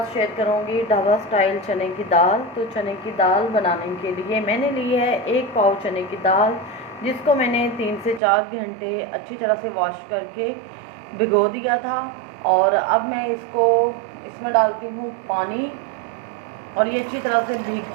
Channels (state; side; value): drops out; left; at 8.2 s